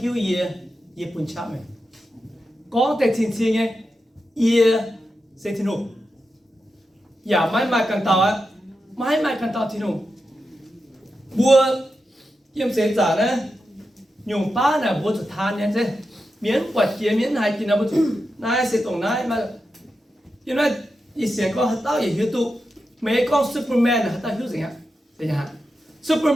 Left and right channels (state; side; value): normal; both; correlation 0.89